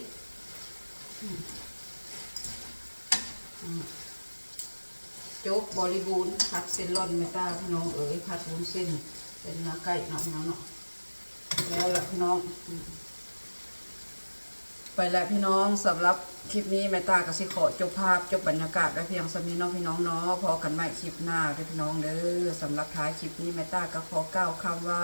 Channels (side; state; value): both; inverted; correlation -1.00